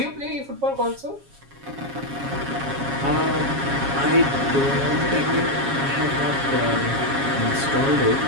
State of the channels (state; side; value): late; left; 7.3 ms